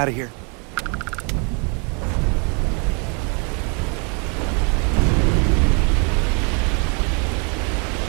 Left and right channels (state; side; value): quieter; left; 35.9 dB